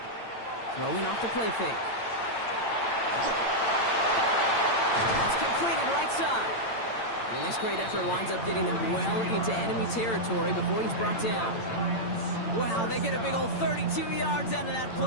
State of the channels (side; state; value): right; late; 8.8 ms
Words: Throwing off the play fake. That's completed right side. And this great effort winds up getting them well into enemy territory before he's brought down. Wow, they get a big old 32 yards out of that